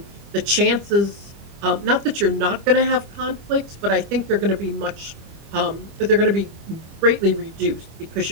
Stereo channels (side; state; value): left; late; 25 ms